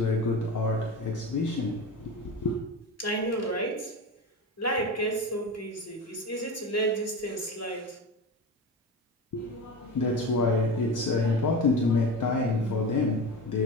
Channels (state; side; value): normal; both; correlation 0.27